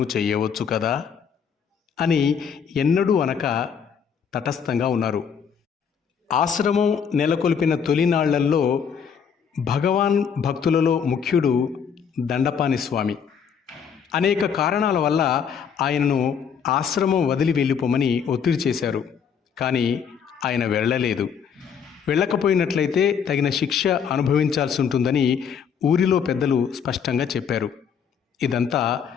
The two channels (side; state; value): right; quieter; 7.2 dB